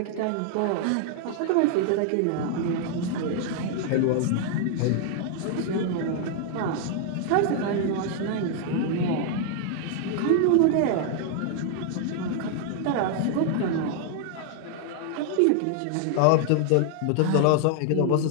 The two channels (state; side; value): different; both; correlation 0.00